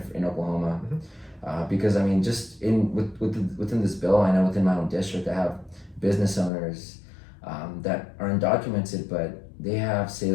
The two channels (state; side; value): drops out; right; at 6.5 s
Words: in Oklahoma. Because just within this bill, I know within my own district, I have business owners that are undocumented, but they have,